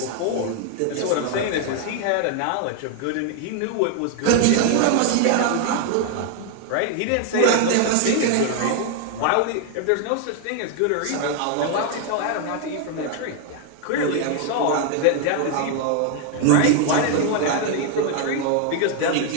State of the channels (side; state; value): both; different; correlation 0.00